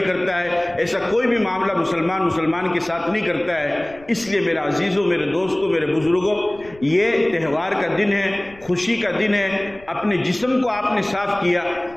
ہے۔ ایسا کوئی بھی معاملہ مسلمان کے ساتھ نہیں کرتا ہے۔ اس لیے میرے عزیزوں، میرے دوستوں، میرے بزرگوں، یہ تہوار کا دن ہے، خوشی کا دن ہے۔ اپنے جسم کو آپ نے صاف کیا،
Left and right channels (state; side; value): noise; left; rumble, 24 dB below the sound